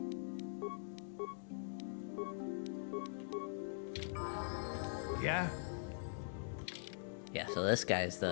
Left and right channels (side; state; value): right; silent; digital silence